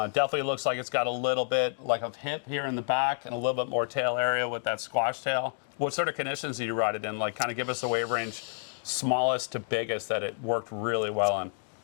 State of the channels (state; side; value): silent; right; digital silence